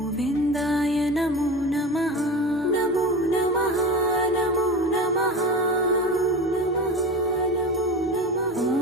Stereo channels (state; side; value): normal; both; correlation 0.29